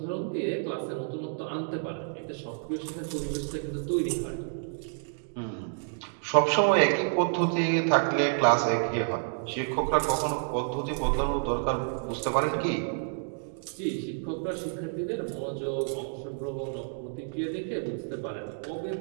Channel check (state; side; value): silent; left; digital silence